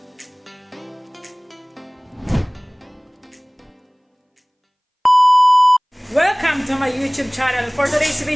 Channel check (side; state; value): both; identical; correlation 1.00